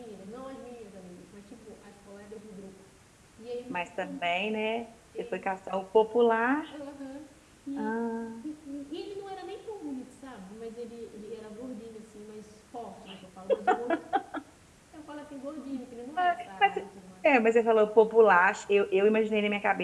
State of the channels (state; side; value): identical; both; correlation 1.00